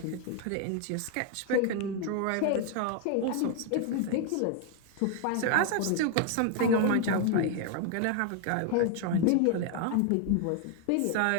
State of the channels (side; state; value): both; different; correlation 0.00